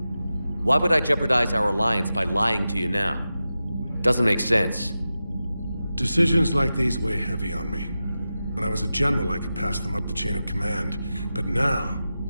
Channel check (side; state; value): both; inverted; correlation -0.93